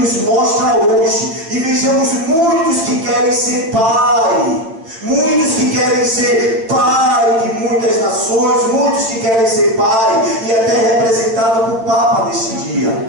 mostra hoje. E vejamos muitos que querem ser pai. Muitos que querem ser pai de muitas nações. Muitos que querem ser pai. E até representado por Papa neste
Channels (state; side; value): late; left; 9.0 ms